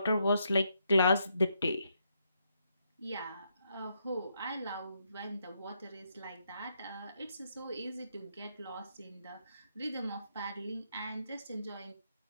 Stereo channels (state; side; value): inverted; both; correlation -0.78